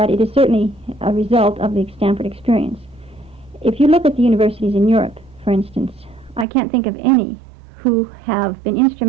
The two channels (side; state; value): left; drops out; at 6.5 s